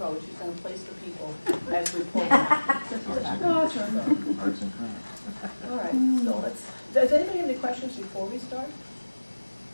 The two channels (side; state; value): both; inverted; correlation -1.00